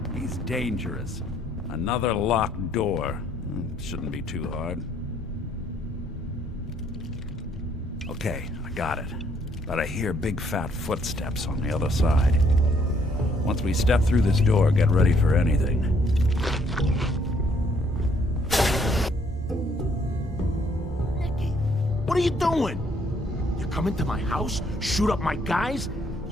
He's dangerous. Another locked door. Shouldn't be too hard. Okay, I got it. But I hear big fat footsteps on the other side. Once we step through this door, get ready for anything. What are you doing? You come into my house, shoot up my guys?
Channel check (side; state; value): both; normal; correlation 0.67